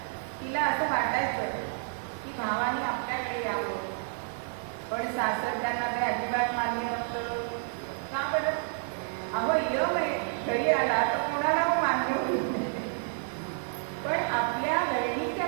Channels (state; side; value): silent; left; 58 dB below the other